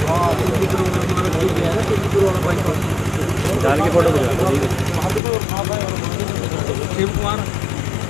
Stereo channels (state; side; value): drops out; right; at 5.2 s